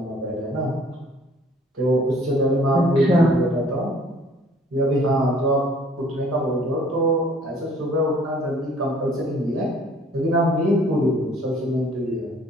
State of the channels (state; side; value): normal; both; correlation 0.56